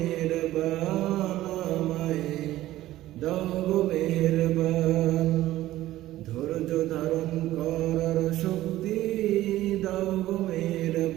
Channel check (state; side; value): quieter; left; 15.1 dB